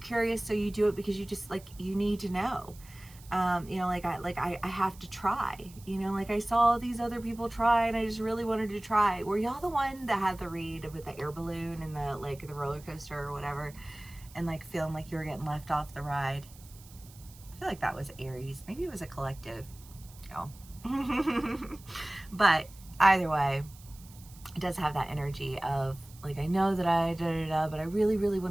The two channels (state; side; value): noise; right; hiss, 22 dB below the sound